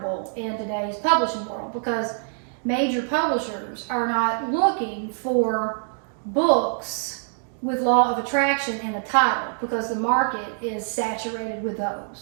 in today's publishing world, because major publishers are not looking for books with law of attraction in a title, because the market is saturated with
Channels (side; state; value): left; silent; digital silence